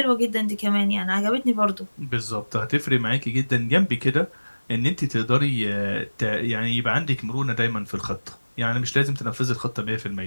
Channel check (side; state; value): both; inverted; correlation -1.00